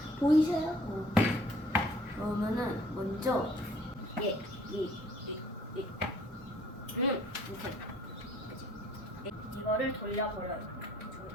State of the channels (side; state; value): both; normal; correlation 0.58